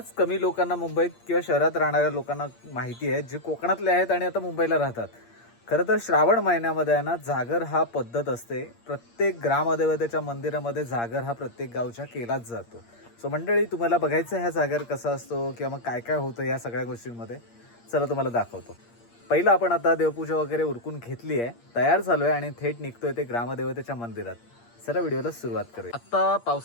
कमी लोकांना मुंबईत किंवा शहरात राहणाऱ्या लोकांना माहिती आहे, जे कोकणातले आहेत आणि आता मुंबईला राहतात. खरं तर श्रावण महिन्यामध्ये आहे ना, जागर हा पद्धत असते. प्रत्येक ग्रामदेवतेच्या मंदिरामध्ये जागर हा प्रत्येक गावच्या केलाच जातो. सो मंडळी, तुम्हाला बघायचं ह्या जागर कसा असतो किंवा मग काय काय होतं या सगळ्या गोष्टींमध्ये, चला तुम्हाला दाखवतो. पहिलं आपण आता देवपूजा वगैरे उरकून घेतली आहे, तयार झालो आहे आणि थेट निघतोय ते ग्रामदेवतेच्या मंदिरात. चला व्हिडिओला सुरुवात करूया. आता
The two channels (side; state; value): right; late; 8.6 ms